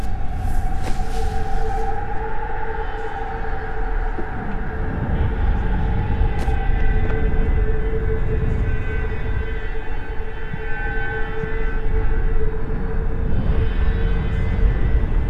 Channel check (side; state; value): both; identical; correlation 1.00